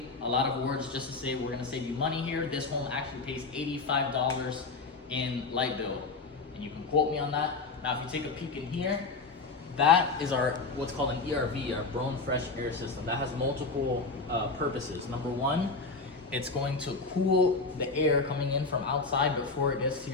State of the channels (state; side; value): quieter; right; 4.0 dB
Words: A lot of awards just to say we're gonna save you money here. This home actually pays $85 in light bill, and you can quote me on that. Now, if you take a peek in here, that is our what's called an ERV, our Blown Fresh Air System. That has multiple purposes. Number one, it's going to cool the air coming in from outside before it gets to